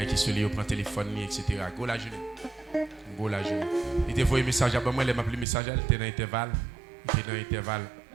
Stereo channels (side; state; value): left; drops out; at 5.5 s